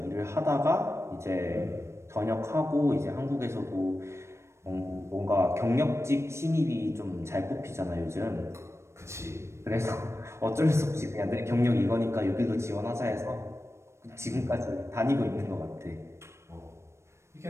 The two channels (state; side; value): late; left; 0.13 ms